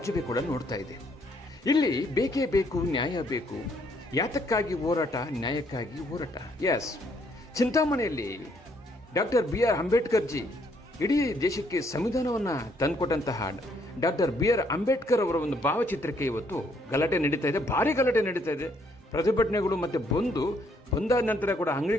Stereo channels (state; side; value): normal; both; correlation 0.69